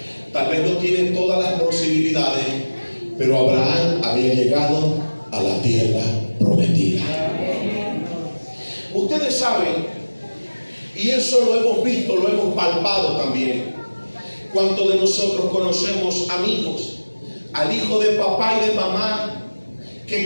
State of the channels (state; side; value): inverted; both; correlation -1.00